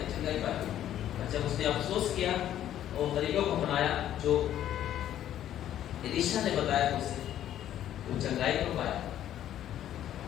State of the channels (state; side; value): quieter; right; 11.5 dB